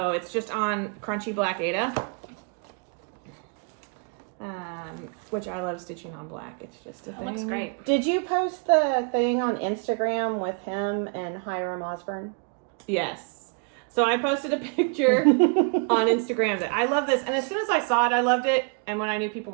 it's just on crunchy black Aida. Which I love stitching on black. It's just a thing. Looks great. Did you post the thing on Instagram with him and Hiram Osborne? Yes. So I posted a picture on Instagram that I love this. And as soon as I saw it, I loved it. And when I knew people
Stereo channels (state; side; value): quieter; left; 39.7 dB